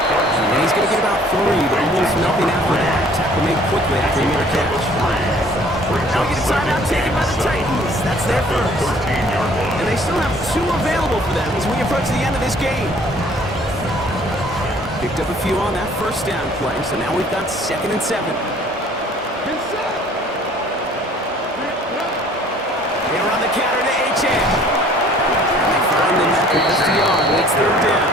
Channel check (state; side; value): normal; both; correlation 0.55